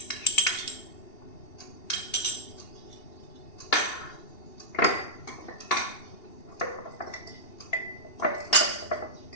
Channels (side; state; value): right; late; 2.8 ms